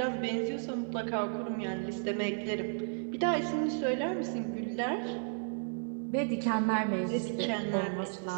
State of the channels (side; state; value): left; silent; digital silence